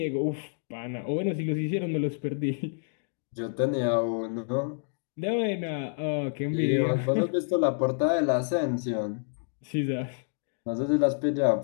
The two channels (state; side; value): silent; right; digital silence